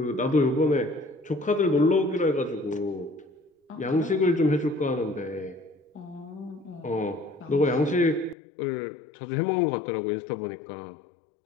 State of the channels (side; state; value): right; drops out; at 8.3 s